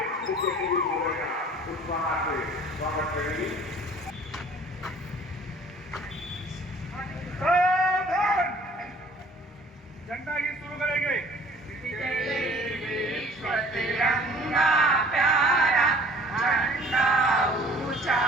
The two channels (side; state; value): both; normal; correlation 0.51